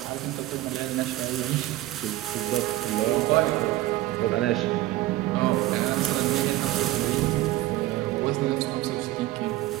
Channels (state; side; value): quieter; left; 16.4 dB